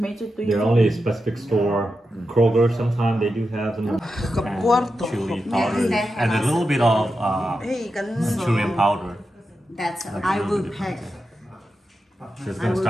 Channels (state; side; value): normal; both; correlation 0.89